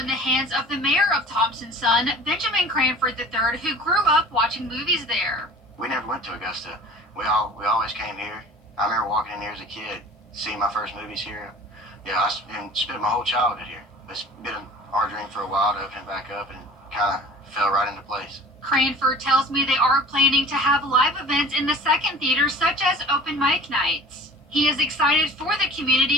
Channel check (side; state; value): both; normal; correlation 0.43